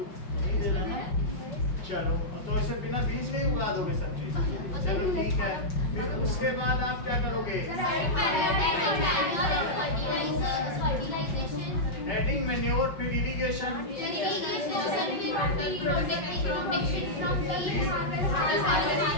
नहीं दे रहा ना। चलो, तो ऐसे बिना बीज में उगा दोगे सब चीज। चलो ठीक है, फिर उसके बाद आप क्या करोगे? एडिंग मैन्योर, फिर इरिगेशन,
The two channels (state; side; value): late; right; 5.5 ms